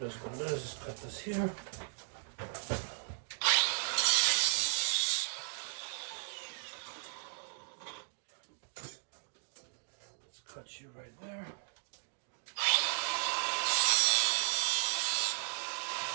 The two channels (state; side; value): silent; left; digital silence